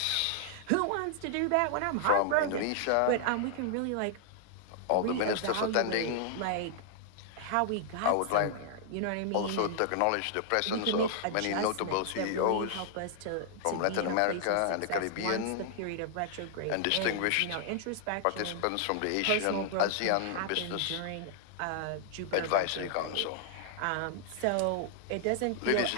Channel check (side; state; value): both; different; correlation -0.01